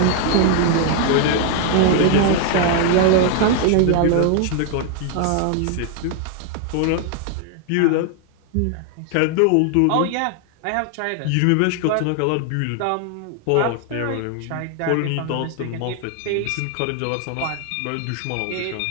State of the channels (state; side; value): different; both; correlation 0.00